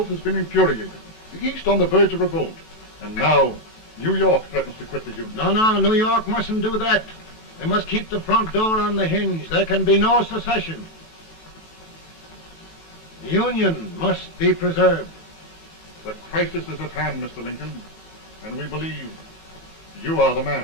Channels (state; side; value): late; right; 18 ms